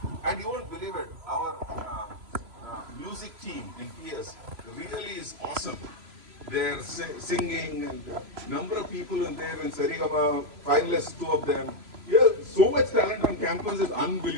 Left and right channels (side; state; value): left; late; 3.0 ms